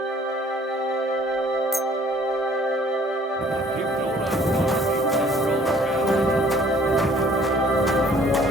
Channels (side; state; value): both; normal; correlation 0.57